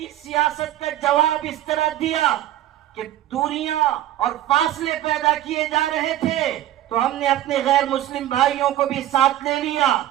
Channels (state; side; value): quieter; left; 13.4 dB